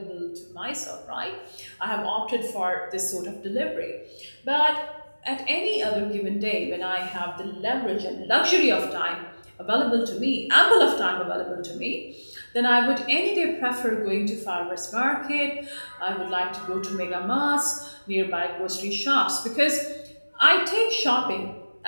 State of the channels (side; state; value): both; inverted; correlation -1.00